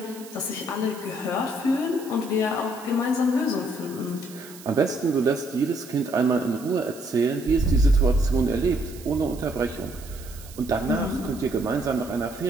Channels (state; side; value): noise; right; hiss, 19 dB below the sound